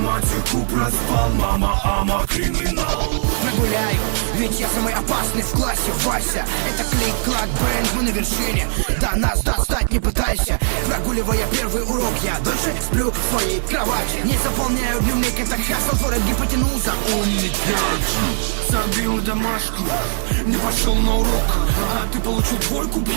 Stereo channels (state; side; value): silent; left; digital silence